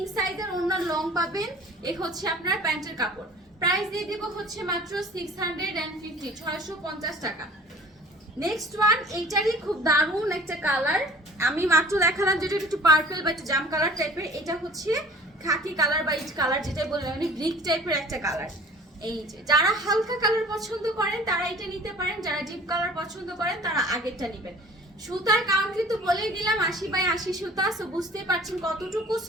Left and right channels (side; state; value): both; normal; correlation 0.47